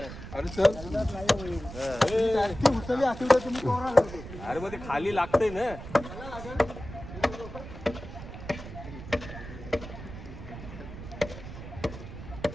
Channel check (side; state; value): right; noise; rumble, 11 dB below the sound